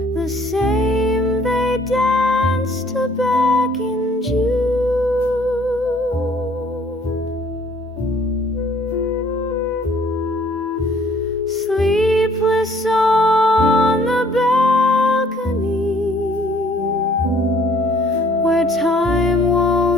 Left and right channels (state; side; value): normal; both; correlation 0.59